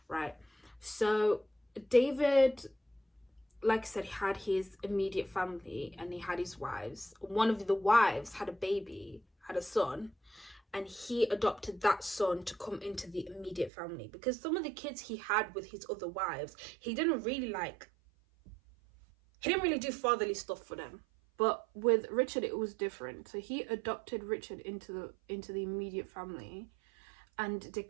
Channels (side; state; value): left; drops out; at 13.7 s